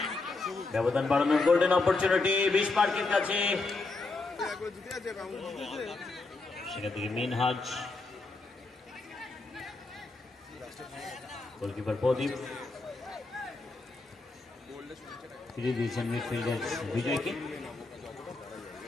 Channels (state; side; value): quieter; right; 3.5 dB